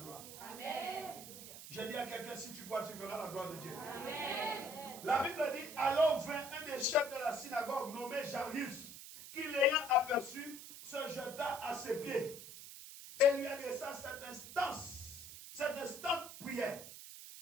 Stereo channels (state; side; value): noise; right; hiss, 13 dB below the sound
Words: Amen. Je dis à quelqu'un, si tu crois, tu verras la gloire de Dieu. Amen. La Bible dit, alors vint un des chefs de la synagogue nommé Jairus, qui l'ayant aperçu, se jeta à ses pieds et lui adressa cette instante prière.